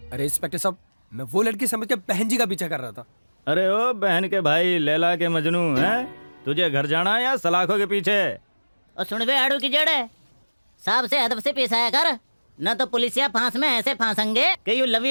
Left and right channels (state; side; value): inverted; both; correlation -1.00